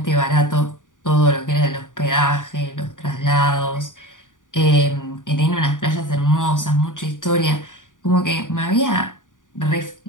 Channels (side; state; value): right; late; 0.88 ms